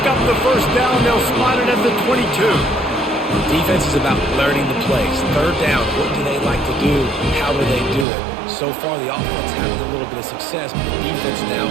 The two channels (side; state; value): left; drops out; at 8.1 s